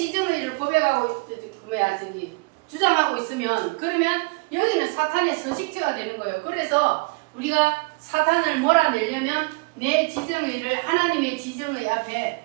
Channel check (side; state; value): left; quieter; 31.6 dB